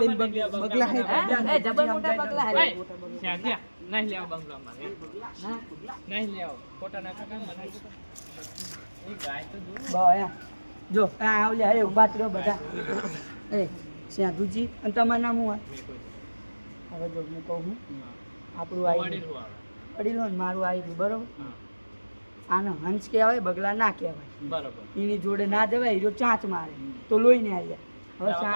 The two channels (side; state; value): both; inverted; correlation -1.00